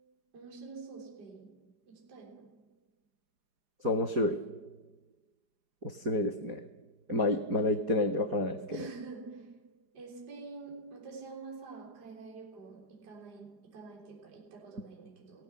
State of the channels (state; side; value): late; left; 4.9 ms